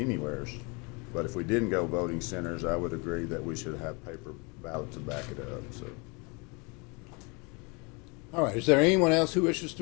But if we didn't go voting centers, I would agree that we should have paper ballot to back it up, so. All right, is there anyone else who wishes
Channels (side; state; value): right; quieter; 30.3 dB